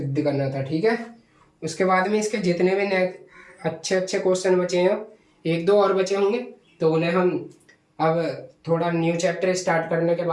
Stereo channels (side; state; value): both; identical; correlation 1.00